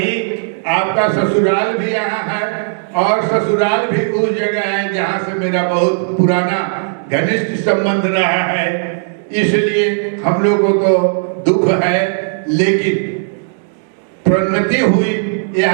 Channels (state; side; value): silent; left; digital silence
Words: आपका ससुराल भी यहाँ है और ससुराल भी उस जगह है जहाँ से मेरा बहुत पुराना घनिष्ठ संबंध रहा है। इसलिए हम लोगों को दुख है, लेकिन प्रोन्नति हुई,